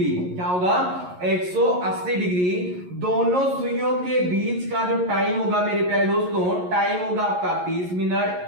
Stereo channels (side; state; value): left; late; 11 ms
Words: क्या होगा? 180 डिग्री। दोनों सुइयों के बीच का जो टाइम होगा मेरे प्यारे दोस्तों, टाइम होगा आपका 30 मिनट।